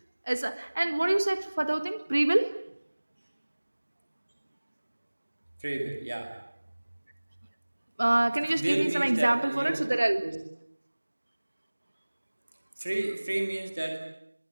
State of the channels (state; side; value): inverted; both; correlation -1.00